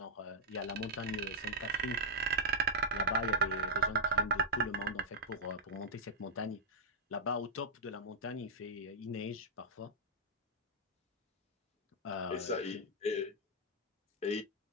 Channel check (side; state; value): both; normal; correlation -0.04